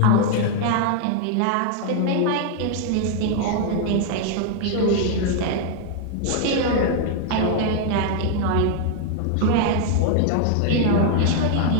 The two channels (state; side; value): different; both; correlation 0.00